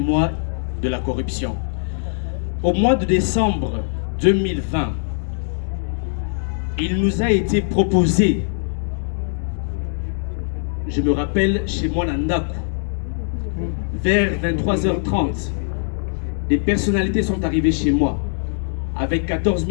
de la corruption. Au mois de décembre 2020, il nous a été proposé, je me rappelle chez moi Nandaku, vers 23h30, des personnalités sont arrivées chez moi avec 14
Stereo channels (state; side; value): silent; right; 63 dB below the other